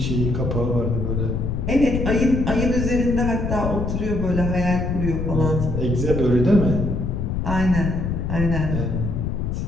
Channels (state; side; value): noise; left; rumble, 2 dB below the sound